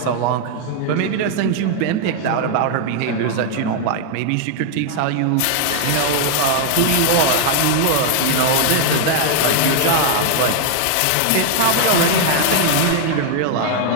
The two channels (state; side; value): different; both; correlation 0.00